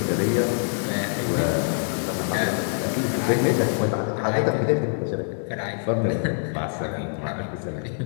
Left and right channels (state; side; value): silent; right; digital silence